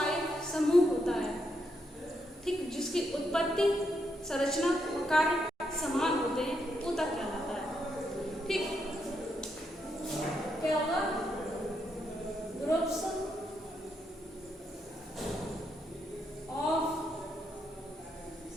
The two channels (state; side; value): normal; both; correlation 0.80